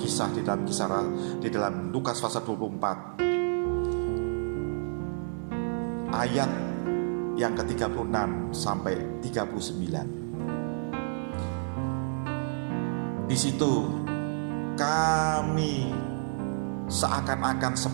di dalam Lukas pasal 24 ayat yang ke-36 sampai 39. Di situ kami seakan-akan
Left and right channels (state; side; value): silent; left; digital silence